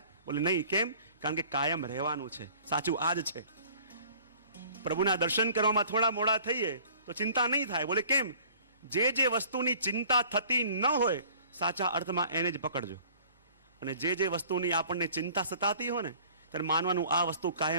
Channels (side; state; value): both; inverted; correlation -0.50